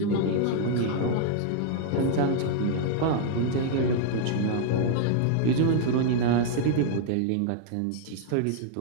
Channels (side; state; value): both; different; correlation -0.01